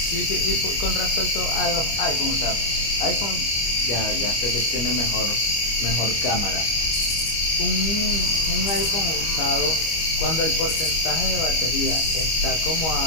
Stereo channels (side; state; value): right; late; 25 ms